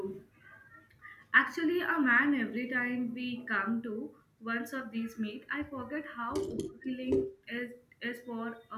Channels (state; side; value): identical; both; correlation 1.00